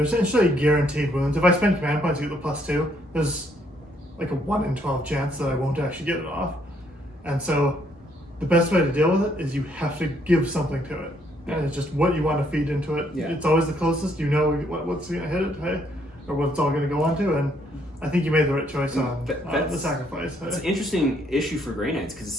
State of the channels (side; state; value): both; normal; correlation 0.70